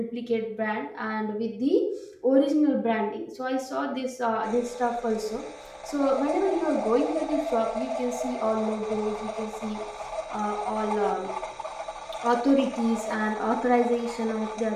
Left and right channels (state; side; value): identical; both; correlation 1.00